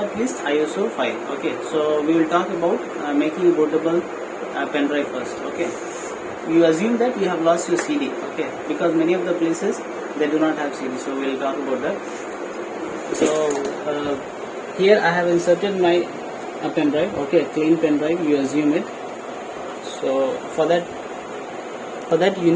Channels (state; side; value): identical; both; correlation 1.00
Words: least ISO file. Okay, so we will talk about making a bootable pen drive first. Okay, you assume that you have lost your CD. Okay, because many of the places they do not have CD, so we will talk about that. So here I have inserted my pen drive. Okay, clean pen drive, you assume it. So for that you